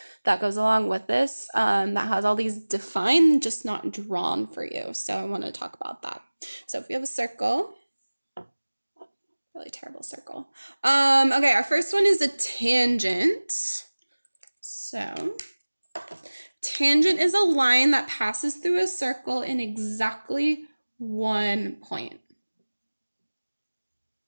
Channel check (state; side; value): inverted; both; correlation -1.00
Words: that goes along with this that has all these defined, just not drawn for you. So I want to talk about that. So if we have a circle, really terrible circle. Okay, our first one is a tangent. So tangent is a line that passes through a circle in exactly one point.